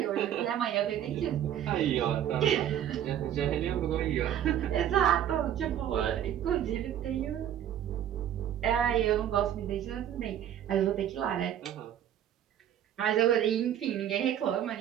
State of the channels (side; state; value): left; quieter; 10.5 dB